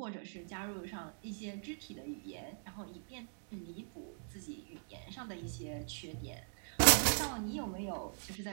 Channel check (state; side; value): silent; left; digital silence